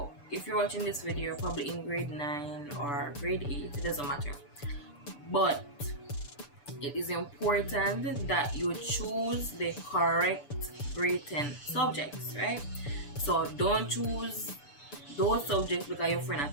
if you're watching this video, you're probably in grade 9 or grade 8, it doesn't matter. But it is important that you choose the correct grade 10 subjects, right? So don't choose those subjects because your friend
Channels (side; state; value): right; late; 6.9 ms